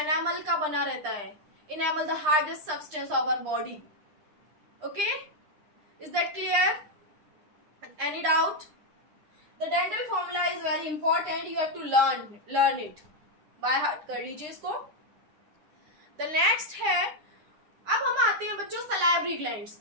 एनामल का बना रहता है. Enamel the hardest substance of our body. Okay is that clear? Any doubt? The dental formula is very important. You have to learn it by heart. कर लीजिए इसको. द नेक्स्ट है, अब हम आते हैं बच्चों सलाइवरी ग्लैंड्स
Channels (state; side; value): late; left; 9.9 ms